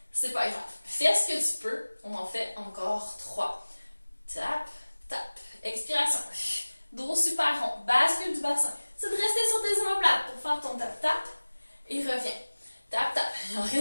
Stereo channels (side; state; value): both; inverted; correlation -1.00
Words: c'est pas grave. Fais ce que tu peux. On en fait encore 3. Tap, tap. Expiration. Dos super rond. Bascule du bassin. C'est de rester sur tes omoplates pour faire ton tap-tap. Et reviens. Tap, tap. Il en